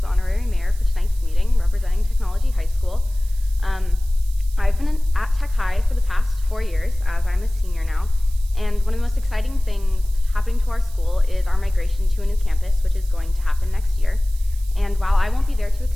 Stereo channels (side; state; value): right; noise; hiss, 22 dB below the sound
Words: honorary mayor for tonight's meeting, representing Technology High School. I've been at Tech High for the past 4 years, as I'm a senior now, and one of the most exciting things happening to our school is our migration to a new campus, which is going to happen next year. And while I won't be there to